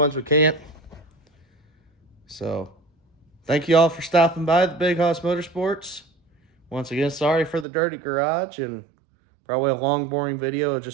we can't. So thank you all for stopping by the Big Hoss Motorsports. Once again, sorry for the dirty garage and probably a long, boring video of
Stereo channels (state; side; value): drops out; left; at 7.7 s